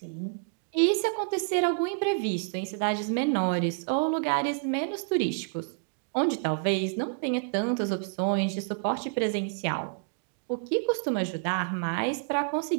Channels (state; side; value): silent; left; digital silence